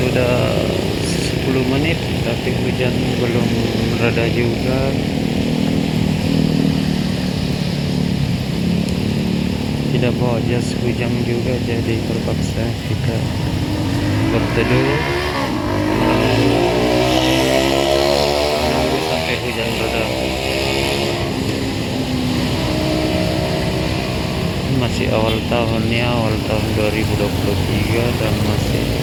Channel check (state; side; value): identical; both; correlation 1.00